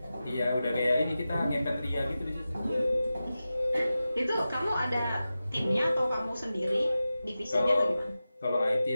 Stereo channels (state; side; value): inverted; both; correlation -0.93